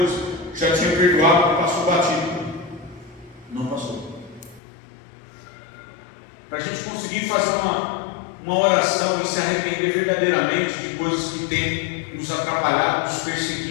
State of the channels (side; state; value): right; drops out; at 4.6 s